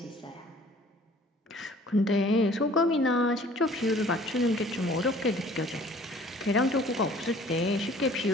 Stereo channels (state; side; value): normal; both; correlation 0.52